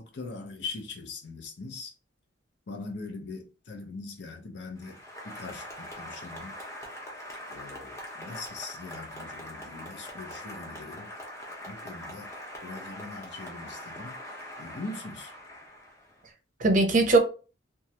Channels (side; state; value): both; normal; correlation 0.41